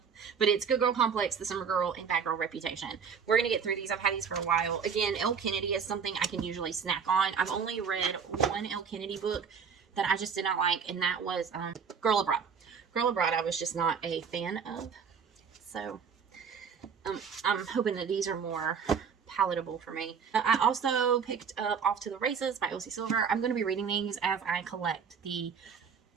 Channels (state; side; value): quieter; left; 6.5 dB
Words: But it's Good Girl Complex, The Summer Girl, and Bad Girl Reputation. We're going to get through these. I've had these for a while. Again, Elle Kennedy is something I can usually snack on. I've only read one Elle Kennedy book that I just did not like, and that was Girl Abroad. Girl Abroad I was just not a fan of. So I'm hoping that these are more palatable for me. I also picked up Off to the Races by Elsie Silver. I'm going to be reading these as I collect the